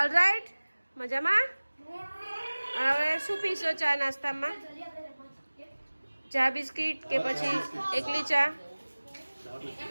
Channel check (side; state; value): both; inverted; correlation -1.00